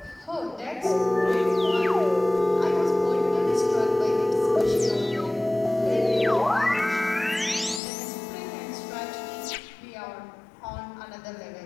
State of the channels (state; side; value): drops out; right; at 7.8 s